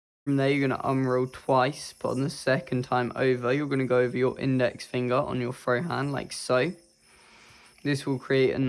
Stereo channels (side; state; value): both; identical; correlation 1.00